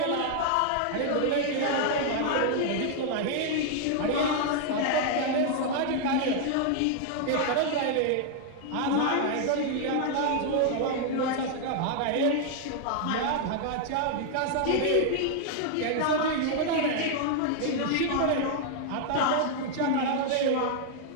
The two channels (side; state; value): both; different; correlation 0.00